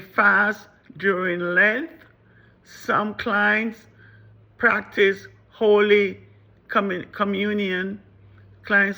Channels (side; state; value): both; identical; correlation 1.00